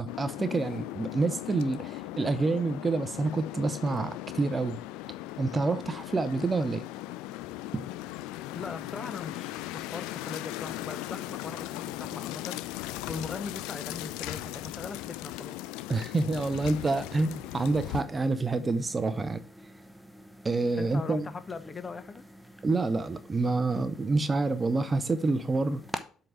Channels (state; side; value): normal; both; correlation 0.82